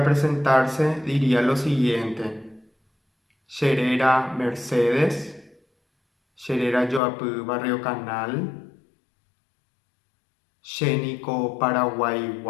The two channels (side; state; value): right; drops out; at 7.0 s